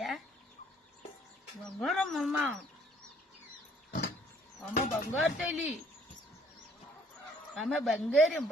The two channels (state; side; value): normal; both; correlation 0.61